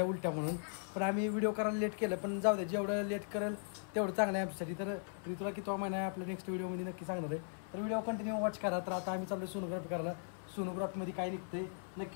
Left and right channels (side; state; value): right; silent; 52 dB below the other